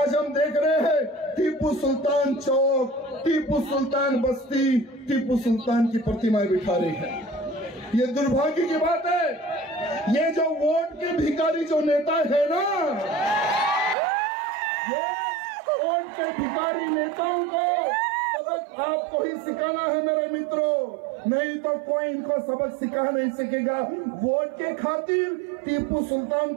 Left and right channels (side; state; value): left; drops out; at 14.0 s